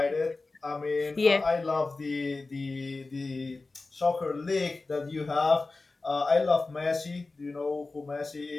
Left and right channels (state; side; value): quieter; right; 3.5 dB